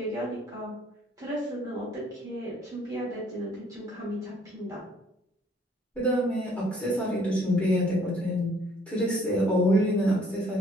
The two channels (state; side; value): normal; both; correlation 0.61